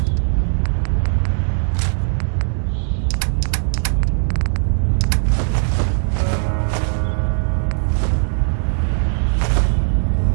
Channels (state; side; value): silent; left; 65 dB below the other